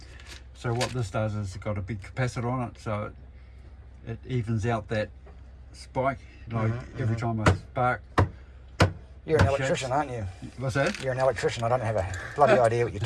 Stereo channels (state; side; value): identical; both; correlation 1.00